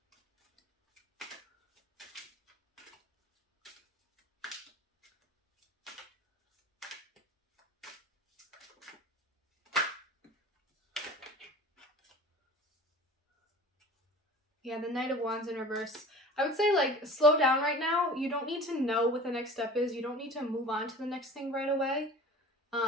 Yeah, the Knight of Wands in reverse. I would say, like, slow down right now. You don't need to know what the next step is. You don't need to move on to the next thing right away.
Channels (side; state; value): both; normal; correlation 0.40